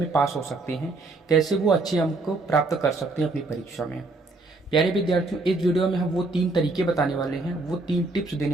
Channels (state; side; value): quieter; left; 3.3 dB